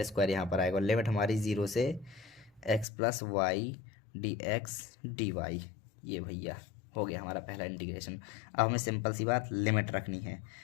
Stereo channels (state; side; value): drops out; right; at 2.9 s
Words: स्क्वायर यहाँ पर आएगा। लिमिट हमारी 0 से x plus y d x D y, ये भैया हो गया हमारा पहला इंटीग्रेशन। अब हमें सिंपल सी बात लिमिट रखनी है,